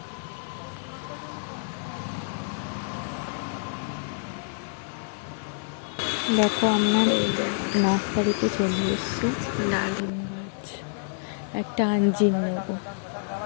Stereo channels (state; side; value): silent; right; digital silence